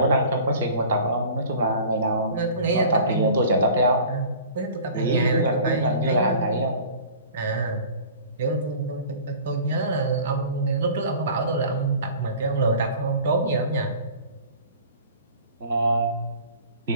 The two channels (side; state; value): both; inverted; correlation -0.44